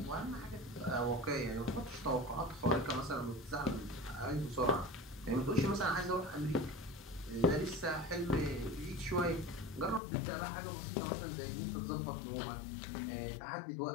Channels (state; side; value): drops out; right; at 10.0 s